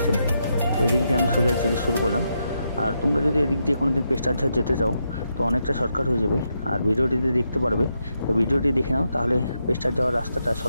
তো এদিক দিয়ে আমি সোজা যেতে শুরু করলাম। আর তোমরা যদি এদিক দিয়ে কোনোদিন পেস্টারঝাড় যেতে চাও তো অনেকটা শর্টকাট হয়ে যাবে। আর ভিডিওটিতে দেখতে পারবে। তো ভিডিওটি দেখে নাও, তাহলে পেস্টার যাওয়ার রাস্তাটা,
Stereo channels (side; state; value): both; inverted; correlation -0.82